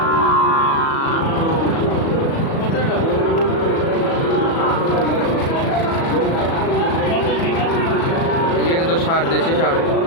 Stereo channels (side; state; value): right; late; 36 ms